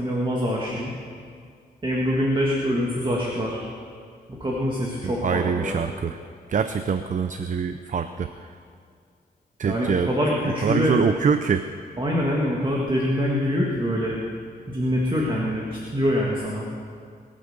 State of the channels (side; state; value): both; normal; correlation 0.63